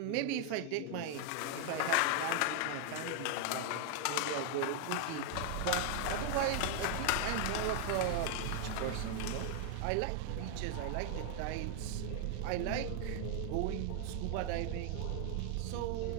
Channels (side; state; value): both; different; correlation 0.00